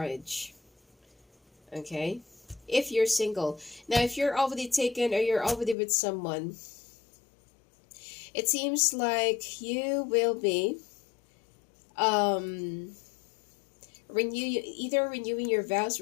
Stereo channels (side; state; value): right; drops out; at 5.8 s